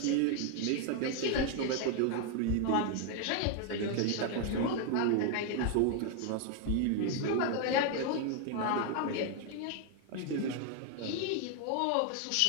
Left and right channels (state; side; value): different; both; correlation 0.00